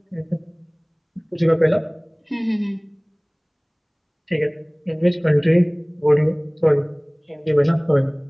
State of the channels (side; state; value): both; identical; correlation 1.00